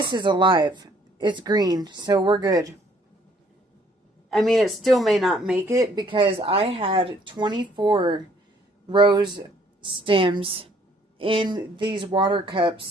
is alive. It's green. So we're good. I mean, it still may not make it because I had 24 rose stems in these water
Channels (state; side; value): normal; both; correlation 0.62